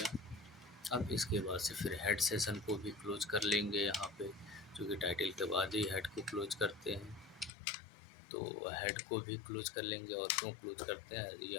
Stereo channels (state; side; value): drops out; right; at 7.5 s